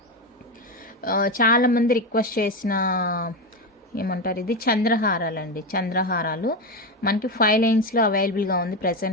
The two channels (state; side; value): normal; both; correlation 0.14